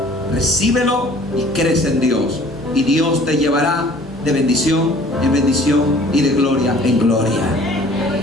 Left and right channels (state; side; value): normal; both; correlation 0.51